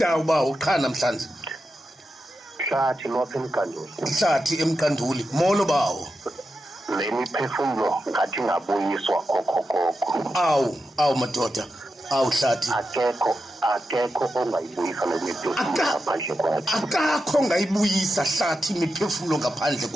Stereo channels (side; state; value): both; normal; correlation 0.89